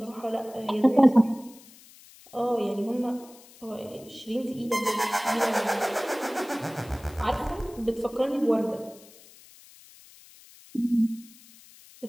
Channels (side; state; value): left; noise; hiss, 23 dB below the sound